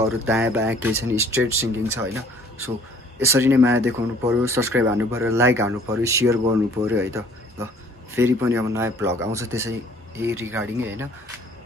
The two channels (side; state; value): both; normal; correlation 0.56